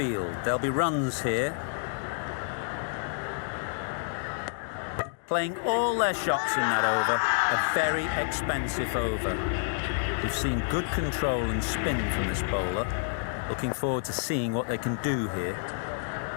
There'll be runs here. Playing all their shots in that over. A very expensive over. We've seen good control and spin from this bowler. Looking forward to seeing what they can do here.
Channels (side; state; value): right; silent; digital silence